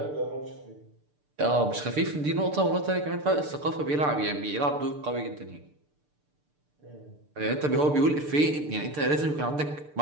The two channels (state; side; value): late; left; 6.8 ms